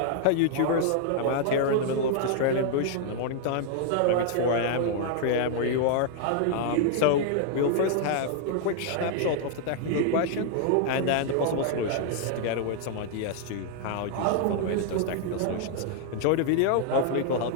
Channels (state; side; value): different; both; correlation 0.00